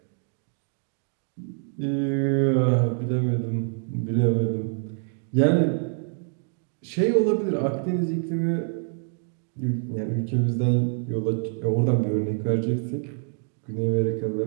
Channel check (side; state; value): left; silent; 56 dB below the other